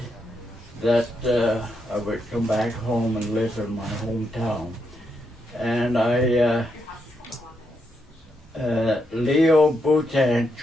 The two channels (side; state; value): both; normal; correlation 0.81